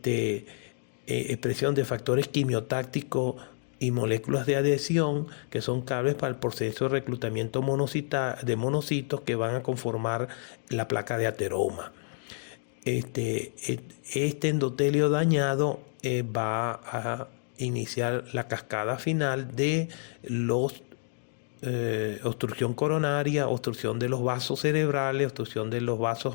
expresión de factores quimiotácticos y moléculas de adhesión que son claves para el proceso de reclutamiento de monocitos que van a conformar la placa de ateroma. Este endotelio dañado va a iniciar la cascada final de obstrucción coronaria, obstrucción de los vasos cerebrales, obstrucción de los vasos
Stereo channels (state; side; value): silent; right; digital silence